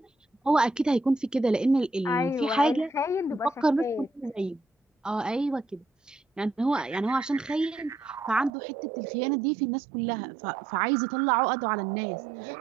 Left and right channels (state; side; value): drops out; left; at 8.5 s